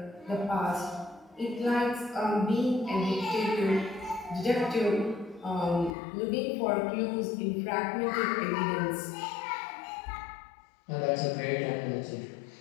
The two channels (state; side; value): drops out; right; at 6.0 s